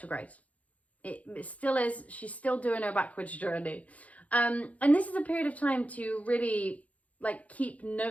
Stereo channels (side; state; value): right; late; 0.069 ms